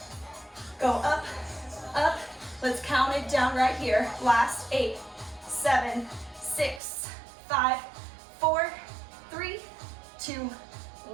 Go up. Up. Let's count it down right here. Last 8, 7, 6, 5, 4, 3, 2,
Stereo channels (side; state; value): left; drops out; at 6.8 s